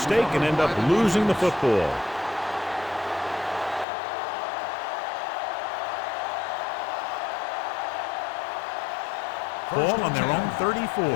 and end up losing the football. Ball on their own 34. Ball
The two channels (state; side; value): drops out; right; at 3.9 s